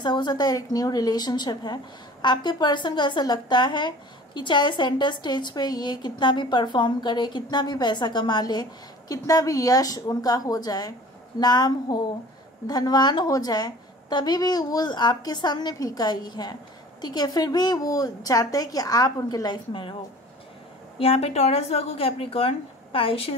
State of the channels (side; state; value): both; normal; correlation 0.45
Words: हो सकता है एक न्यू रिलेशनशिप है। आपके पर्सन को ऐसा लगता है कि चाहे सेंटर स्टेज पे ये कितना भी परफॉर्म करे, कितना भी पैसा कमा ले, कितना भी यश उनका हो जाए, नाम हो, धनवान हो जाए, तभी भी वो आपके सामने फीका ही है, ठीक है। फिर भी वो चाहते हैं कि आप उनके लाइफ में रहो। यहाँ पे Taurus, Virgo, Capricorn,